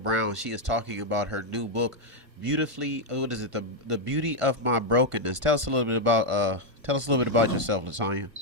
Brown. She is talking about her new book, beautifully. What is it? The Beauty of My Brokenness. Tell us a little bit about yourself, LaTonya.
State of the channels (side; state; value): left; late; 1.5 ms